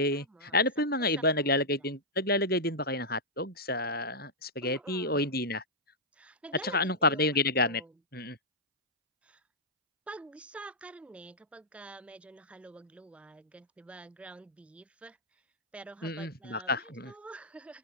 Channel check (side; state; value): both; normal; correlation -0.09